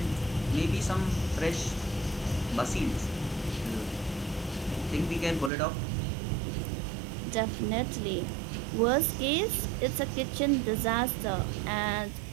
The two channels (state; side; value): drops out; left; at 5.5 s